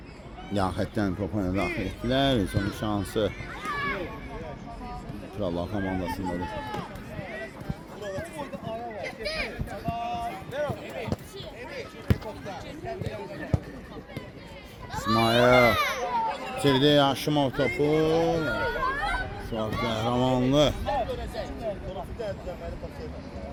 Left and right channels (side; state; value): both; identical; correlation 1.00